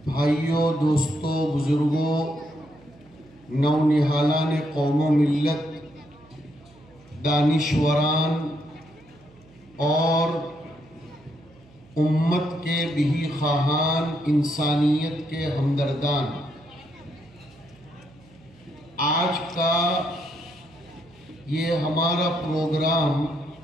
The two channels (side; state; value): right; noise; hum, 27 dB below the sound